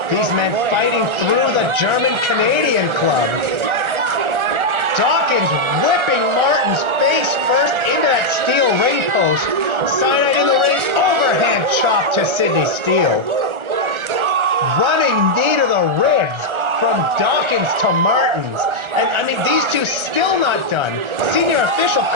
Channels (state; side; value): late; left; 1.3 ms